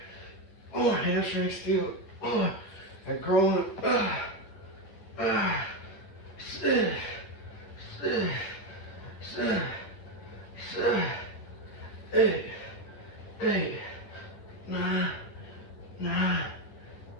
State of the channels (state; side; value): late; right; 10 ms